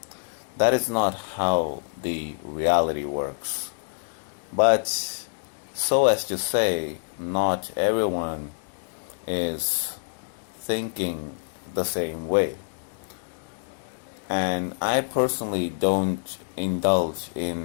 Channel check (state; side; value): silent; right; digital silence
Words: That is not how the reality works. But so as to say, not everyone is thinking the same way. And I personally don't indulge